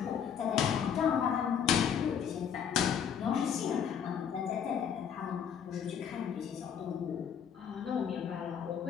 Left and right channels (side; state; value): right; quieter; 7.9 dB